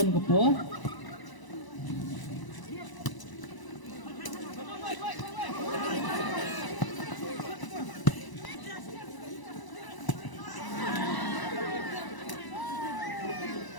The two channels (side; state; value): right; late; 1.0 ms